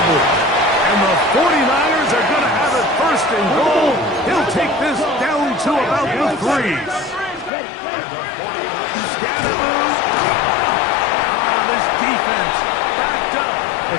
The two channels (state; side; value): drops out; right; at 7.5 s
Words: And the 49ers are going to have it 1st and goal. He'll take this down to about the 3s. Scatterbush. This defense backed up.